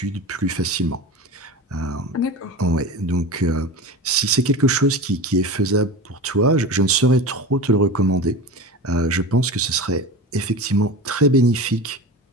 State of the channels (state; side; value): normal; both; correlation 0.29